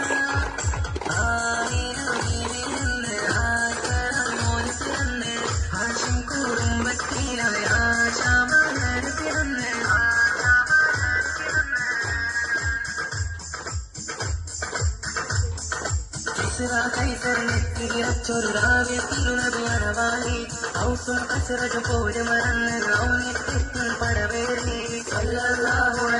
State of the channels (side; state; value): both; identical; correlation 1.00